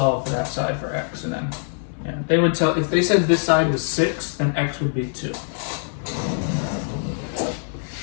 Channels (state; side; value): silent; right; digital silence